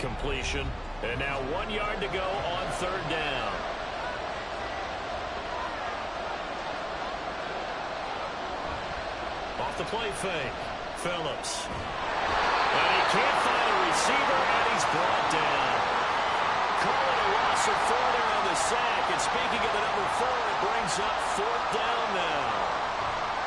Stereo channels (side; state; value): both; identical; correlation 1.00